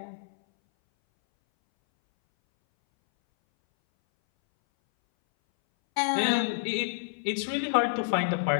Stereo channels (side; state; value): right; silent; 59 dB below the other